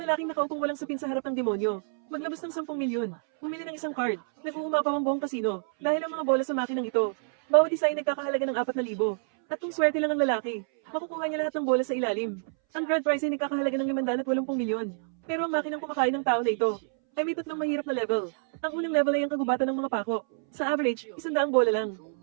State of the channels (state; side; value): silent; left; 59 dB below the other